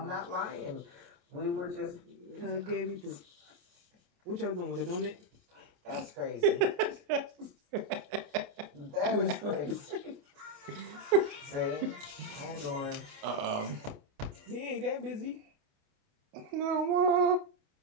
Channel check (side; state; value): left; late; 29 ms